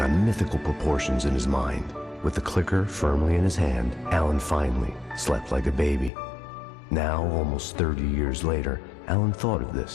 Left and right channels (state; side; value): drops out; right; at 6.1 s